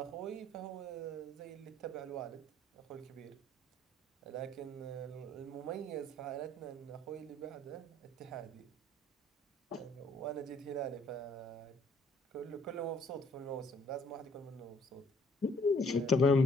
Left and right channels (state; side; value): normal; both; correlation 0.62